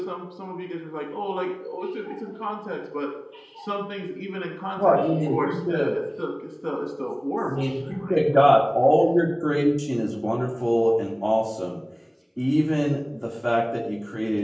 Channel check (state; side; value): identical; both; correlation 1.00